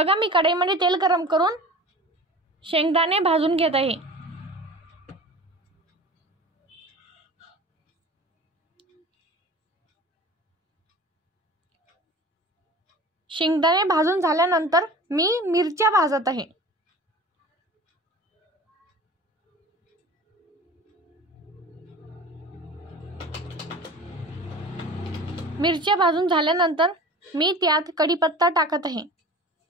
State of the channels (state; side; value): normal; both; correlation 0.39